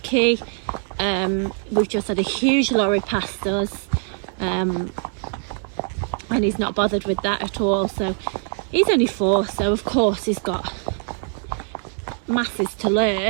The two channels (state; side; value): silent; left; 58 dB below the other